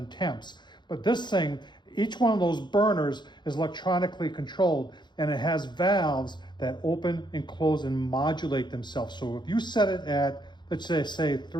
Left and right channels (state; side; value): late; right; 0.21 ms